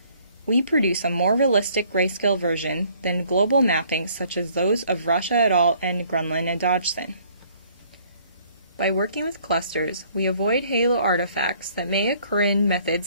we produce a more realistic grayscale version than global mappings such as those of Russia et al. And Grunland and Dodgson. By working with clusters, we avoid halo artifacts that may occur in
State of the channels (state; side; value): inverted; both; correlation -0.60